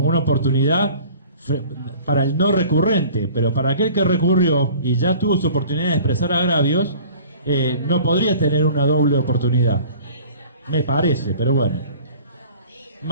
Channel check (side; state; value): both; inverted; correlation -0.46